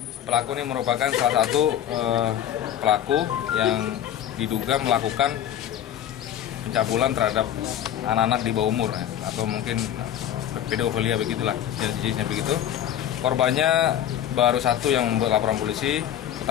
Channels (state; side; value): quieter; right; 10.8 dB